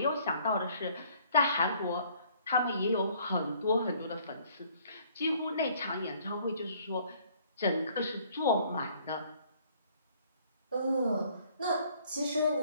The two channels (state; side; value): inverted; both; correlation -0.60